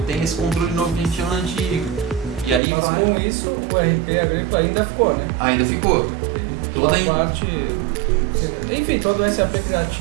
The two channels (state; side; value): drops out; left; at 2.6 s